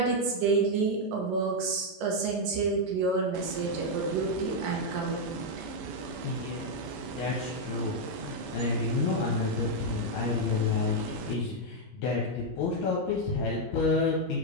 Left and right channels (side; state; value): both; normal; correlation 0.00